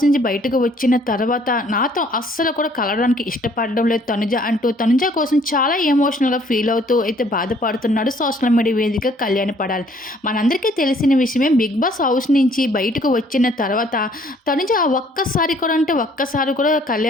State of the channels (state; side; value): normal; both; correlation 0.61